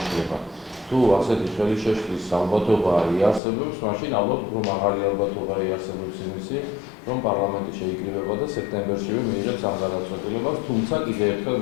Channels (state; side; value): drops out; right; at 3.4 s